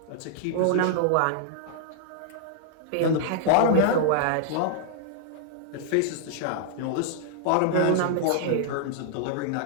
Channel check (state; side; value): different; both; correlation -0.01